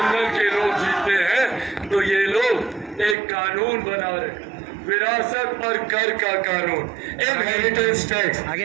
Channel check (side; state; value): left; drops out; at 3.2 s